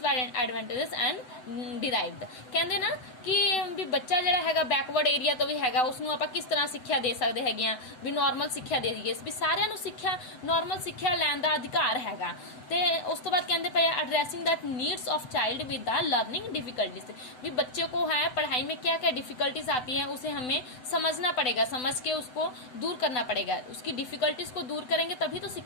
and derived. कहते ना कि भी बच्चा जरा हैगा बैकवर्ड एरिया तो भी हैगा, उसनों आप किस तरह शिक्षा दे सकते हैगे भी नॉर्मल शिक्षा दे दीए, भी सारिਆਂ ਨੂੰ शिक्षा नॉर्मल शिक्षा ਲੈਣ ਦਾ अधिकार हैगा। ਤੇ ਉਸ ਤੋਂ ਬਾਅਦ ਕਹਿੰਦੇ पए addressing that needs of child with the learning difficulties. भी बच्चे को है पढ़ाई में क्या क्या डिफिकल्टीज आती हैं उसे हमें समझना पड़ेगा, समझ के उसको दूर करना पड़ेगा। उसकी डिफिकल्टीज को दूर करेंगे तभी तो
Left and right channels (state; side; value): late; right; 7.9 ms